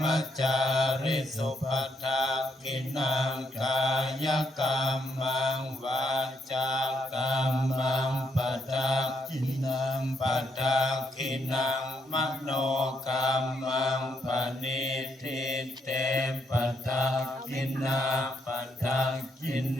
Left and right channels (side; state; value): both; normal; correlation 0.77